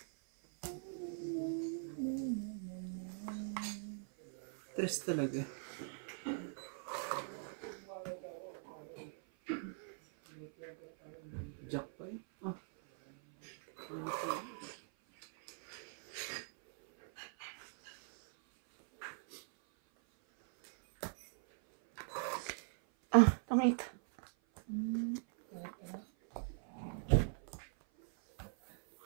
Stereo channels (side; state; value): left; silent; 50 dB below the other